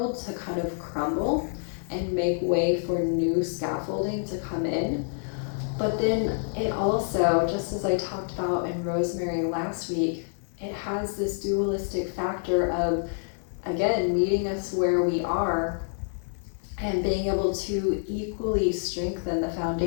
to kind of crumble and make way for new scaffolding to come in. But then it also, just as I talked about in Rosemary last week, it has this dualistic factor of, again, meeting us where we are and being able to equally strengthen the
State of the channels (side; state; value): right; silent; 60 dB below the other